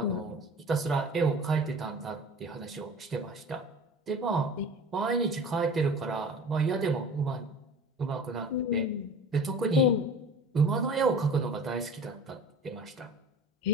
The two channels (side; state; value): both; normal; correlation 0.40